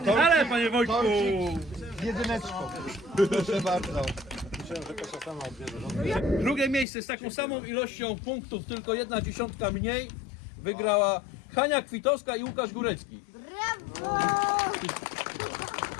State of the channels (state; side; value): drops out; right; at 6.9 s